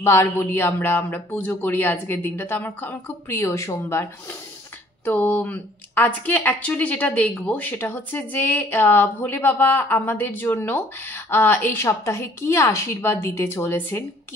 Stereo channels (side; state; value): both; normal; correlation 0.58